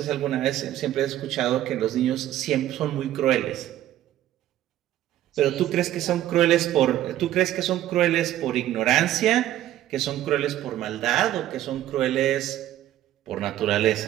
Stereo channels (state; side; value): quieter; left; 13.1 dB